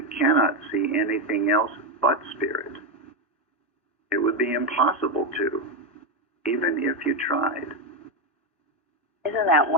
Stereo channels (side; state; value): both; normal; correlation 0.08